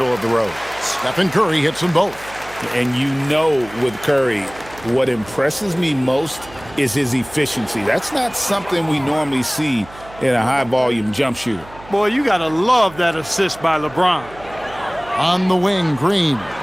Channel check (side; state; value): right; noise; hum, 20 dB below the sound